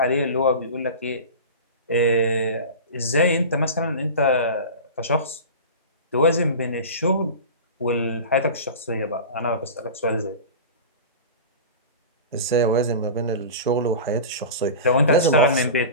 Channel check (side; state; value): both; inverted; correlation -0.32